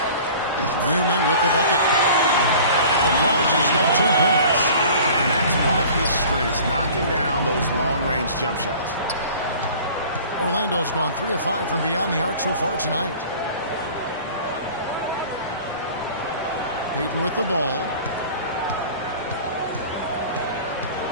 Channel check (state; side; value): inverted; both; correlation -0.45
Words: Newman with the bucket. The Prodigy's got 2 points. And that's one of his strengths, knocking down those long-range jump shots. Orlando's gone 3 of 5 from beyond the arc so far tonight. Payton with the ball.